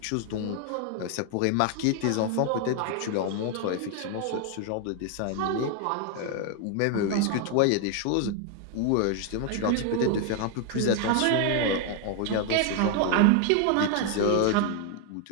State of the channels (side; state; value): both; different; correlation 0.00